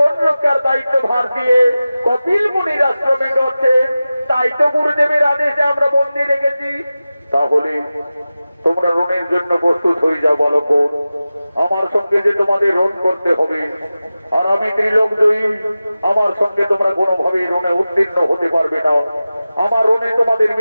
রক্ষার দায়িত্ব ভার দিয়ে কপিল মুনির আশ্রমে করছেন। তাই তো গুরুদেবের আদেশে আমরা বন্দি রেখেছি। তাহলে তোমরা রণের জন্য প্রস্তুত হয়ে যাও বালক। আমার সঙ্গে যে তোমাদের রণ করতে হবে, আর আমি ত্রিলোকজয়ী, আমার সঙ্গে তোমরা কোনোভাবে রণে উত্তীর্ণ হতে পারবে না। আমার রণে তোমাদের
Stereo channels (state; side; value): inverted; both; correlation -0.95